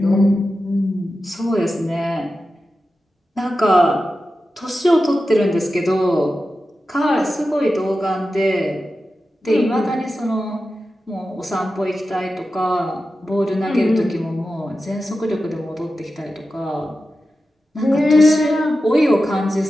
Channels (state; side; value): normal; both; correlation 0.92